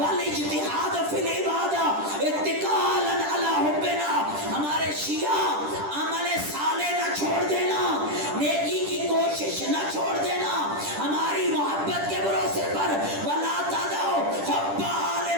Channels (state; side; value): late; left; 10 ms